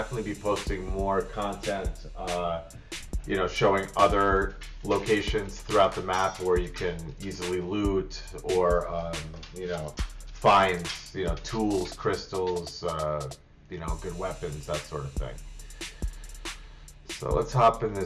be posting more content, showing other locations throughout the map where you can easily loot or, find, tools, crystals, good weapons, that sort of thing. So let's hop in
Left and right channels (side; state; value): both; identical; correlation 1.00